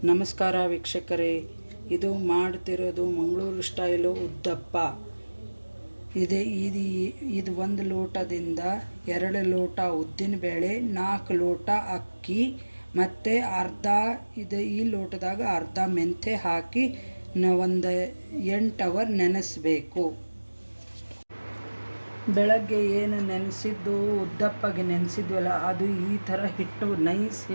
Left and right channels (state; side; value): inverted; both; correlation -1.00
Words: ನಮಸ್ಕಾರ ವೀಕ್ಷಕರೇ, ಇದು ಮಾಡ್ತಿರೋದು ಮಂಗಳೂರು ಸ್ಟೈಲು ಉದ್ದಪ್ಪ. ಇದು 1 ಲೋಟದಿಂದ 2 ಲೋಟ ಉದ್ದಿನಬೇಳೆ, 4 ಲೋಟ ಅಕ್ಕಿ ಮತ್ತು ಈ ಲೋಟದಾಗ ಅರ್ಧ ಮೆಂತೆ ಹಾಕಿ ಒಂದು 8 ಅವರ್ ನೆನೆಸಬೇಕು. ಬೆಳಗ್ಗೆ ಏನು ನೆನೆಸಿದ್ದು ಉದ್ದಪ್ಪಗೆ ನೆನೆಸಿದ್ವಲ್ಲ, ಅದು ಈ ಥರ ಹಿಟ್ಟು ನೈಸ್